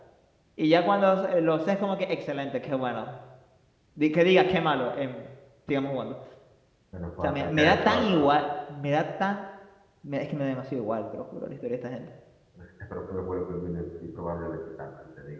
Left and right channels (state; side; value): identical; both; correlation 1.00